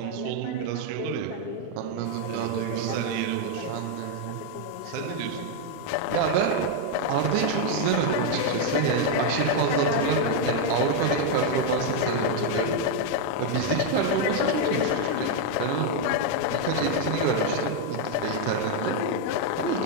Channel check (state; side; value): different; both; correlation 0.01